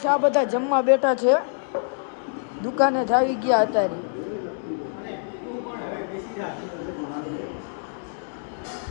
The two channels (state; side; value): silent; right; digital silence